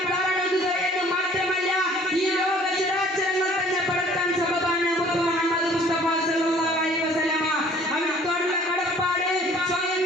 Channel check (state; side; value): normal; both; correlation 0.54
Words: കാരണത് എന്ന് മാത്രമല്ല, ഈ ലോക ചരാചരങ്ങൾ തന്നെ പടക്കാൻ സബബാണ് മുഹമ്മദ് മുസ്തഫ സല്ലല്ലാഹു അലൈഹി വസല്ലമ. അവനോടുള്ള കടപ്പാട്